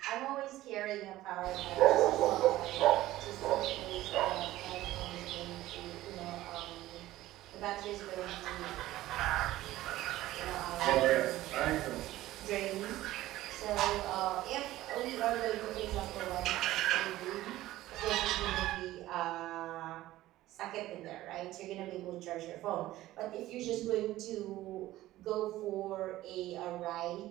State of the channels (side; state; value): left; quieter; 15.8 dB